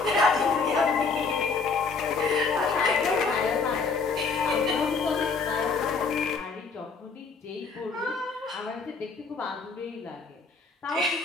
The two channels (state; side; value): quieter; right; 4.7 dB